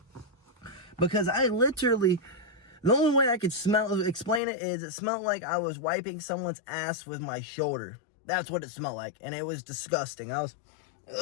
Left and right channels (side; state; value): right; drops out; at 4.4 s